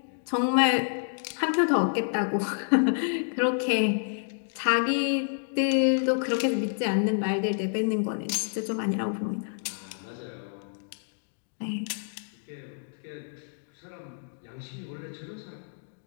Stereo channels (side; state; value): right; silent; digital silence